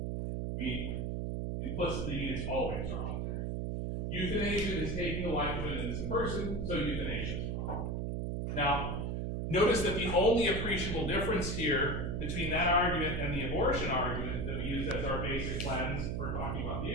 We implicitly mean it's always wrong there. Euthanasia is taking the life of an innocent person, so euthanasia is wrong. Now, notice that the only appreciable difference here between that argument and the abortion argument that we use as our basic lens for talking about the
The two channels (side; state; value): right; noise; hum, 1 dB below the sound